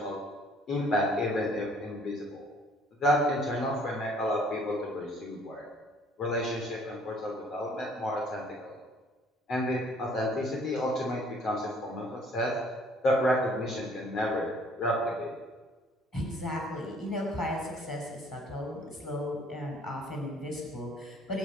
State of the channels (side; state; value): both; normal; correlation 0.58